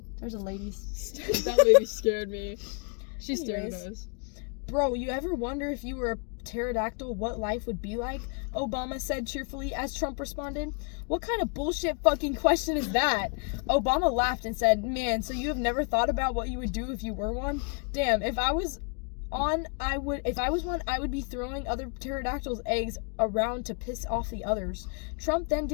There's a lady. That lady scared me. She stared at Anyways. us. Bro, you ever wonder if you were a pterodactyl what life would be like? Obama said cheerfully as Trump responded. What kind of bullshit fucking question is that? Obama laughed and said, "Man, so you have never thought about what you would do if you were one? Damn, if I was one, I would be throwing other pterodactyls' eggs around to piss off the others." Trump then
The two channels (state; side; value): quieter; right; 38.7 dB